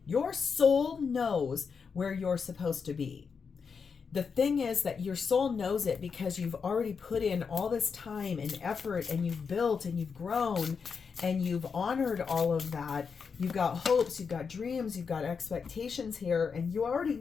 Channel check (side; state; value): right; quieter; 5.8 dB